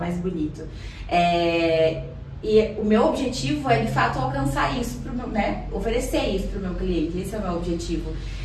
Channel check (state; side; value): identical; both; correlation 1.00